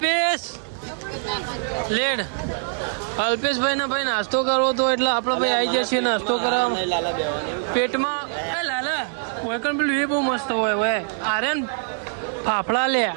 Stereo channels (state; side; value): silent; left; digital silence